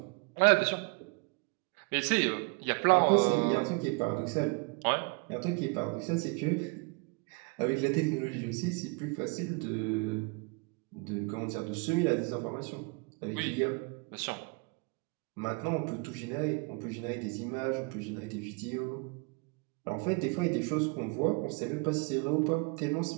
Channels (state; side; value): quieter; left; 31.0 dB